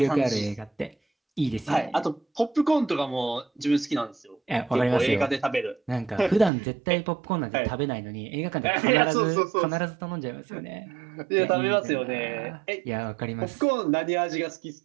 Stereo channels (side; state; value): left; drops out; at 6.5 s